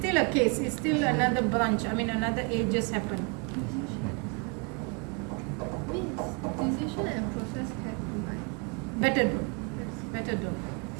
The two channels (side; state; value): left; quieter; 33.0 dB